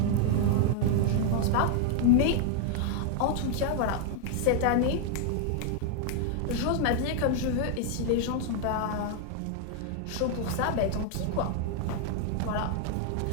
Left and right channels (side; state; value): both; different; correlation 0.00